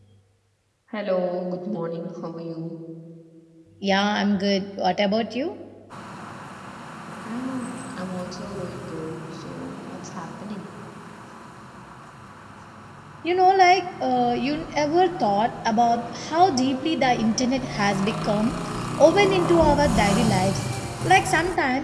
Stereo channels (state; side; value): identical; both; correlation 1.00